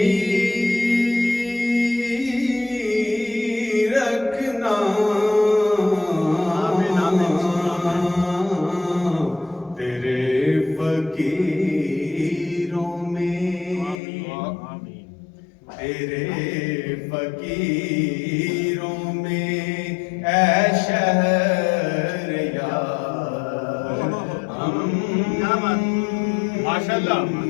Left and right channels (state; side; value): drops out; right; at 14.0 s